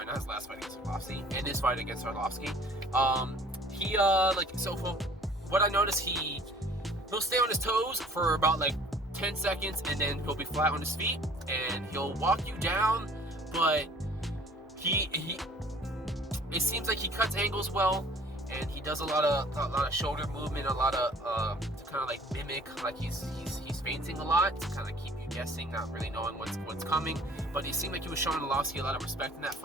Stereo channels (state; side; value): normal; both; correlation 0.52